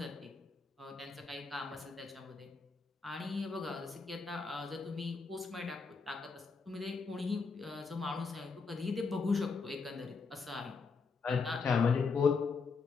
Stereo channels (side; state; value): right; quieter; 4.8 dB